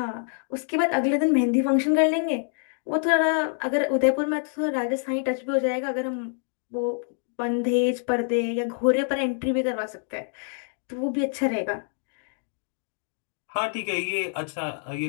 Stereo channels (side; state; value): right; silent; 61 dB below the other